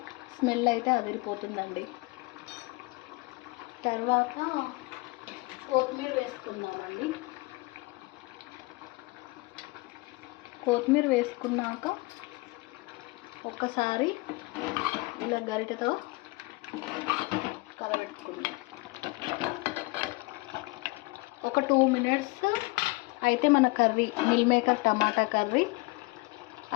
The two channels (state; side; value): quieter; right; 24.7 dB